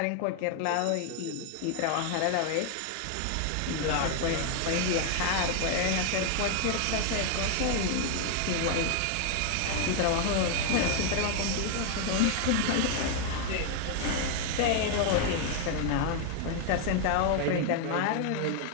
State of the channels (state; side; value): different; both; correlation 0.00